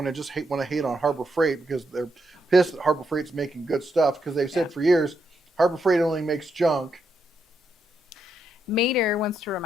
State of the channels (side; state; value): both; normal; correlation 0.80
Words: and just want to hate on Harbor Freight because they're pissed that Harbor Freight's making good stuff because they've said for years, Harbor Freight only makes junk. Mater wants to